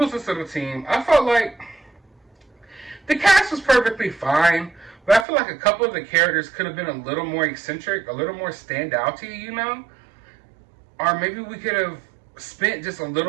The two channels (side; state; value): left; drops out; at 5.2 s